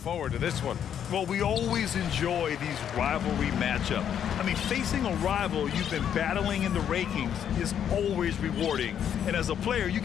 to this one. Well, we always enjoy these rivalry matchups. I mean, facing a rival you've been battling in the rankings is always rewarding. And as a player, you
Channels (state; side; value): quieter; right; 9.1 dB